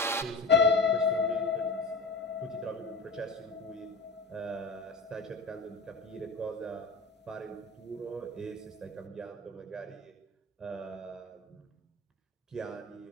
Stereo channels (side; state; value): right; quieter; 3.4 dB